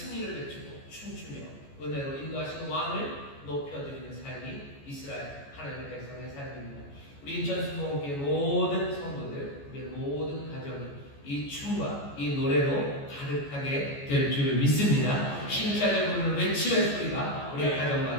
외치고 춤추며 은혜로 인도하시는 왕을 높여드리는 삶이 이스라엘 하나님의 백성의 삶입니다. 우리 인천수목교회 모든 성도들, 우리의 모든 가정이 이 춤과 이 노래로 가득하게 될 줄 믿습니다. 힘차게 부르는 외침의 소리가 우리의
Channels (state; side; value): late; right; 14 ms